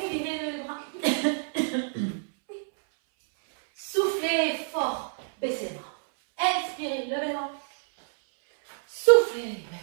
le bras. Soufflez fort. Baissez les bras. Inspirez, levez les bras. Soufflez,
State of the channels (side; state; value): left; silent; 60 dB below the other